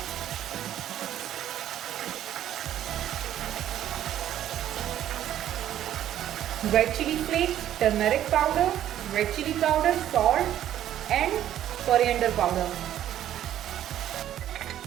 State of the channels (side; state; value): left; quieter; 11.6 dB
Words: Red chili flakes, turmeric powder, red chili powder, salt and coriander powder.